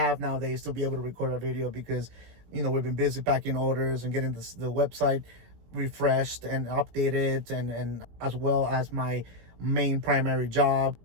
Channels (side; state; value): left; late; 17 ms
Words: nowadays to be able to record a video because, you know, we've been busy packing orders and getting the website refreshed and updated, and as well as my main primary job